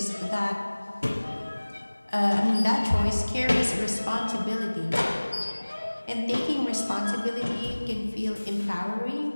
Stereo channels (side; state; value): both; inverted; correlation -1.00